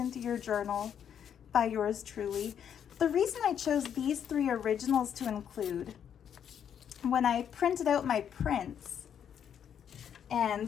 your journal by yours truly. The reason I chose these 3 originals to include, when I printed out my prints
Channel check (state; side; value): quieter; right; 8.7 dB